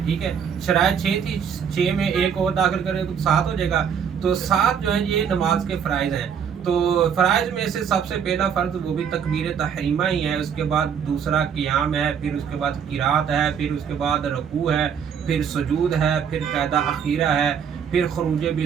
ٹھیک ہے۔ شرائط 6 تھی، 6 میں ایک اور داخل کریں تو 7 ہو جائے گا، تو 7 جو ہیں یہ نماز کے فرائض ہیں۔ تو فرائض میں سے سب سے پہلا فرض وہ بھی تکبیر تحریمہ ہی ہے، اس کے بعد دوسرا قیام ہے، پھر اس کے بعد قرات ہے، پھر اس کے بعد رکوع ہے، پھر سجود ہے، پھر قاعدہ اخیرہ ہے، پھر خروج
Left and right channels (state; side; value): quieter; left; 7.6 dB